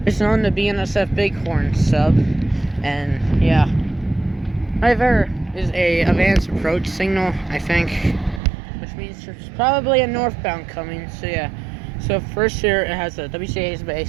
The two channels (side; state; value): left; drops out; at 8.4 s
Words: It's known to BNSF Bighorn sub, and yeah. Right there is a advanced approach signal, I think, which means there's probably a northbound coming. So yeah. So first here it has a WCA's